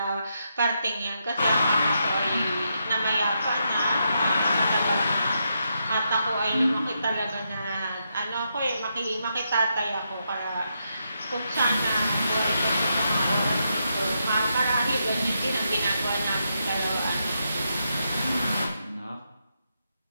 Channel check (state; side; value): inverted; both; correlation -0.82